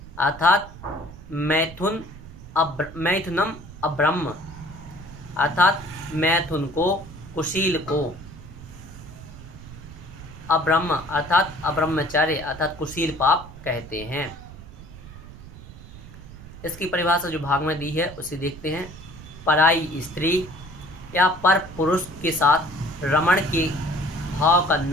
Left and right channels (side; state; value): right; noise; rumble, 16 dB below the sound